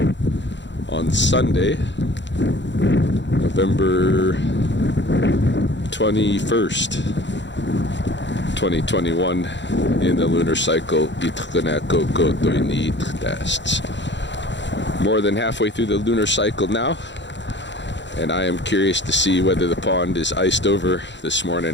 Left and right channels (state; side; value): late; right; 0.52 ms